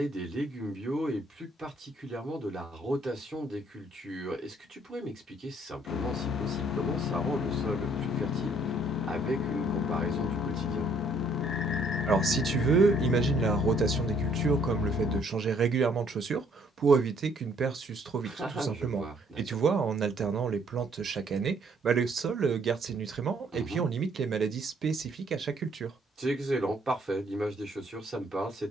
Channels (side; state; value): both; normal; correlation 0.64